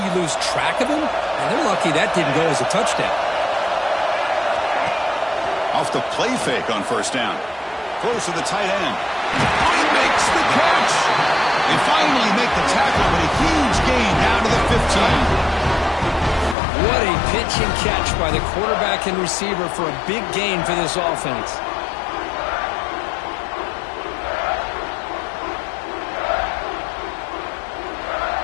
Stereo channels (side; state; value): right; drops out; at 16.6 s